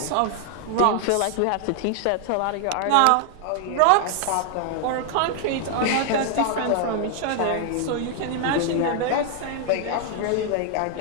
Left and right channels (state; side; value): different; both; correlation 0.00